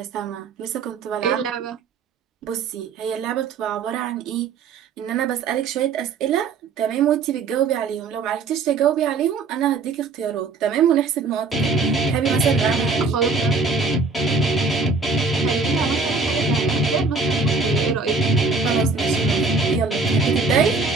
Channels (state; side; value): quieter; left; 4.3 dB